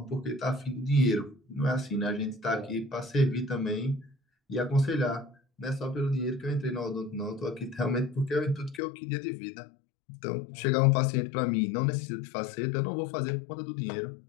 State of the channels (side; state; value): right; drops out; at 8.8 s